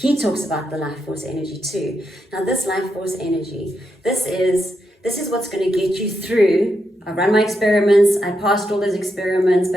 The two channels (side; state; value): both; normal; correlation 0.83